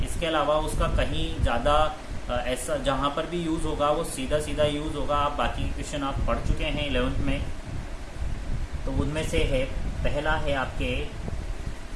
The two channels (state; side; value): identical; both; correlation 1.00